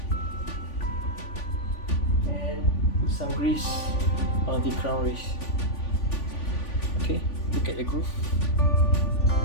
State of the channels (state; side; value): late; right; 3.5 ms